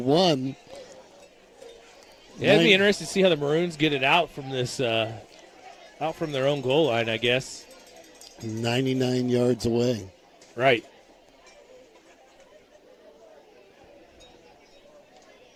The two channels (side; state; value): both; identical; correlation 1.00